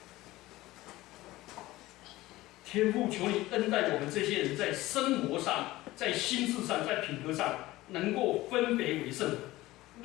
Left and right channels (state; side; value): quieter; right; 17.9 dB